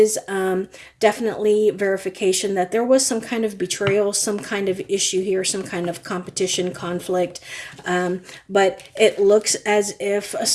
definitely verification that there was some kind of betrayal, some kind of issue here, some kind of competition, conflict. But it looks as if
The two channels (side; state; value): both; identical; correlation 1.00